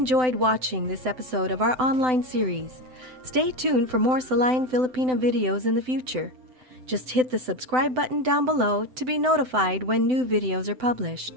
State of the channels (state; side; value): late; left; 7.9 ms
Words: watching this episode of our online series. Stay tuned for more Silayan Filipina videos in the future. Just hit the subscribe button down below to be notified when new videos are